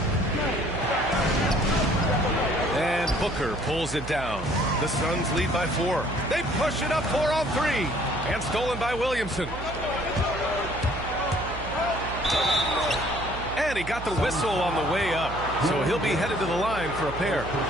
And Booker pulls it down. The Suns lead by 4. They push it up 4 on 3. And stolen by Williamson. And he got the whistle on the way up. So he'll be headed to the line for a pair.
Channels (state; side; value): noise; right; hum, 10 dB below the sound